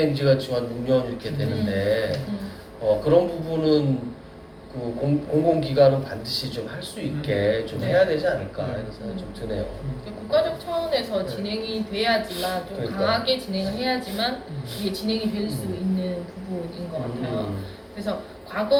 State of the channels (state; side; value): identical; both; correlation 1.00